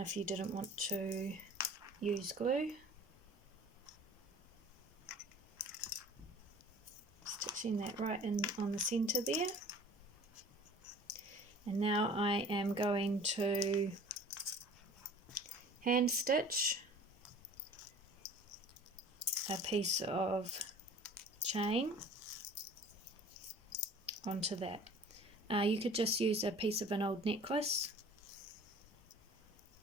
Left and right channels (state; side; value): normal; both; correlation 0.45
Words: you didn't want to use glue. Stitching that right in on the center there. And now I am going to hand stitch a piece of chain onto that. You could just use a piece of an old necklace